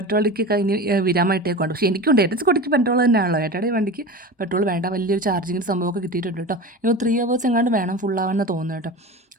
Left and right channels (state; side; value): normal; both; correlation 0.30